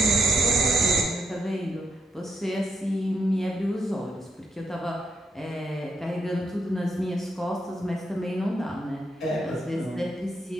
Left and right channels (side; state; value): both; normal; correlation 0.80